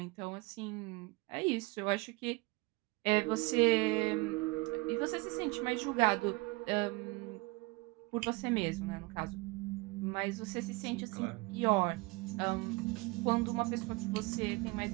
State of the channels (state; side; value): quieter; left; 24.5 dB